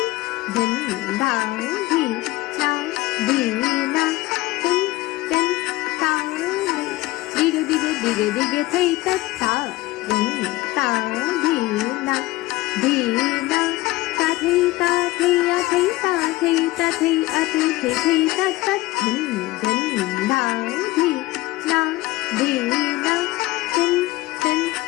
din ta dhi na tin tin ta đi thầy tất ta din ta dhi na ta thi a thi ta thi a thi tất tất din ta dhi na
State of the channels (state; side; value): quieter; right; 18.7 dB